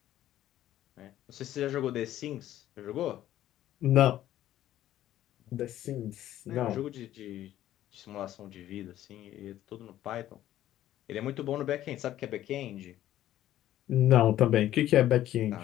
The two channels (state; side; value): quieter; right; 13.0 dB